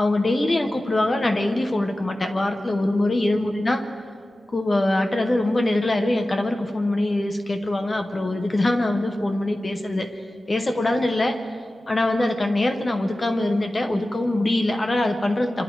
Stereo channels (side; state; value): both; normal; correlation 0.95